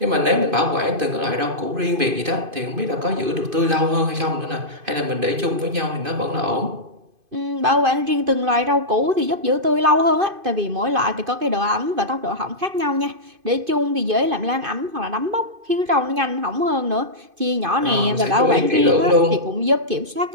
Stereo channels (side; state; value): left; late; 2.5 ms